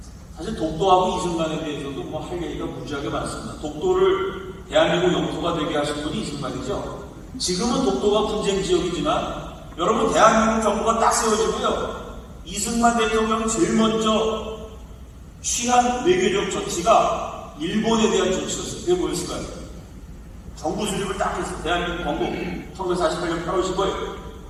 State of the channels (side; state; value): both; identical; correlation 1.00